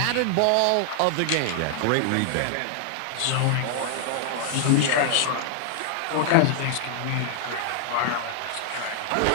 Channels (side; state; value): both; different; correlation -0.01